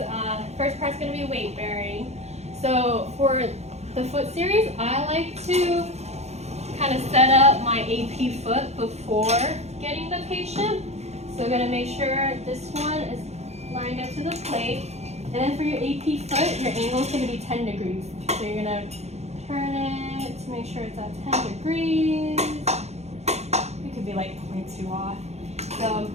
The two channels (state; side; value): late; left; 0.31 ms